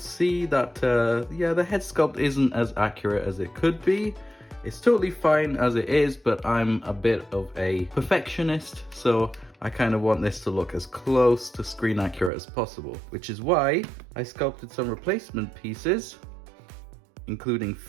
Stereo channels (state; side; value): drops out; left; at 12.3 s